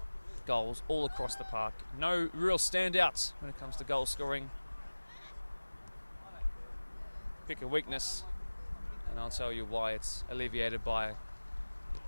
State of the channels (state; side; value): inverted; both; correlation -1.00